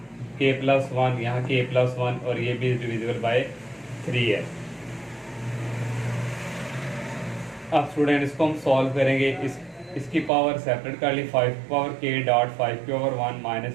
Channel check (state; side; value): drops out; left; at 10.3 s